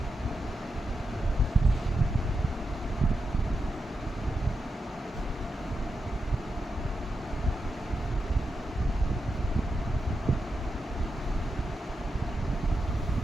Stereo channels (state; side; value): normal; both; correlation 0.87